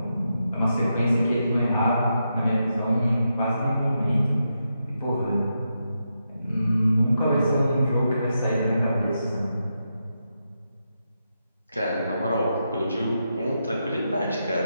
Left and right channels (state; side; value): inverted; both; correlation -0.85